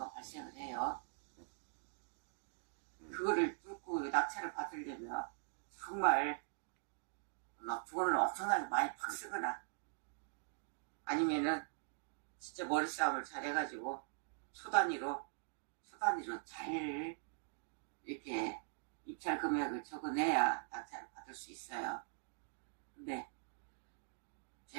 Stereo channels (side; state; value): left; silent; digital silence